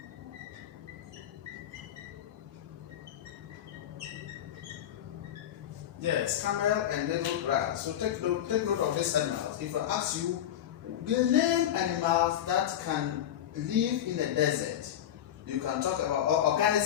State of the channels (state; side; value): quieter; right; 10.9 dB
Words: Yes, camel and needle grass. So take note of these animals. If I ask you, the name animals that can live in the desert, you can talk about, or